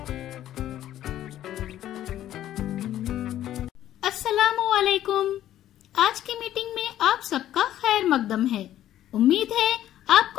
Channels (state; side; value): quieter; right; 12.4 dB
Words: अस्सलामुअलैकुम। आज की मीटिंग में आप सबका खैर मकदम है। उम्मीद है